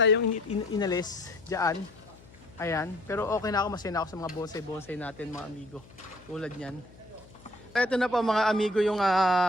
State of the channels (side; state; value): left; noise; hum, 23 dB below the sound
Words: inalis dyan. Ayan. Pero okay na ako, masaya na ako sa mga bonsai natin mga amigo. Tulad yan. Ito na po mga amigo yung